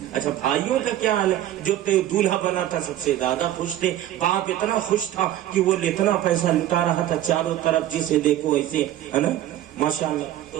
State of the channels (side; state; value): left; quieter; 12.8 dB